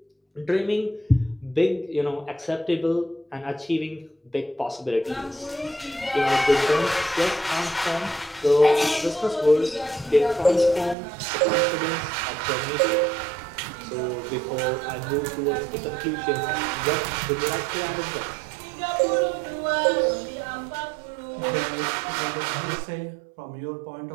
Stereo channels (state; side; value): drops out; left; at 11.0 s